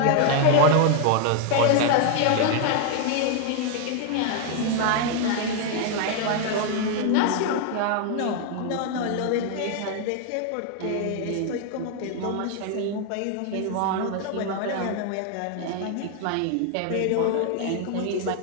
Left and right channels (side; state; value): both; different; correlation 0.00